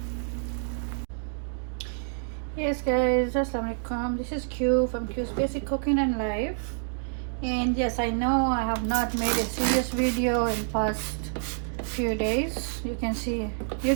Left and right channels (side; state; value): left; silent; digital silence